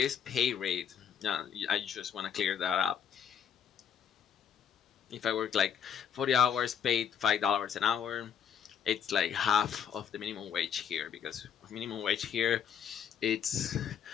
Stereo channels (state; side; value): quieter; right; 8.1 dB